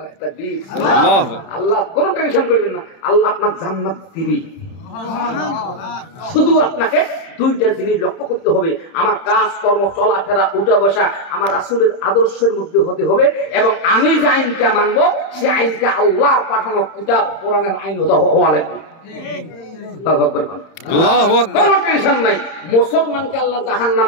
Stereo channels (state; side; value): late; right; 31 ms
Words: তাকবীর। আল্লাহু আকবার। আল্লাহ কোনো টেনশন করবেন না, আল্লাহ আপনার জান্নাত দিবে। শুধু আপনাকে 2টা জিনিস লক্ষ্য করতে হবে, আমার কাজ কর্ম, চলাফেরা, উঠা বসা আমার রাসূলের আদর্শের মধ্যে হতে হবে, এবং আমি যে আইনটা মানবো সে আইনটা আল্লাহর পাঠানো কিতাব কোরআনের আইন হওয়া লাগবে। আল্লাহু আকবার। আল্লাহু আকবার। কোনো টেনশন নাই। মুসলমানকে আল্লাহ জাহান্নাম